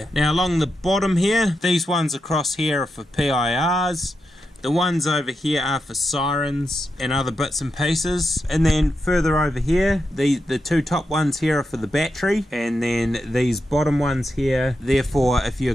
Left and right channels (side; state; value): both; normal; correlation 0.86